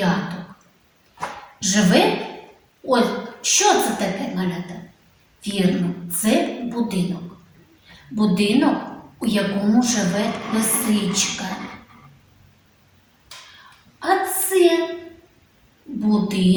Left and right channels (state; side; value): identical; both; correlation 1.00